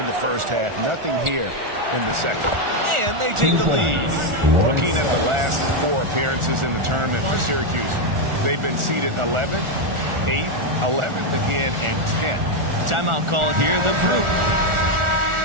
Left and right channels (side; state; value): left; late; 1.4 ms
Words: the first half. Nothing here in the second. And they take the lead. Looking at the last 4 appearances in the tournament for Syracuse, they've been seeded 11th, 8th, 11th again, and 10th. Timeout called here. The group.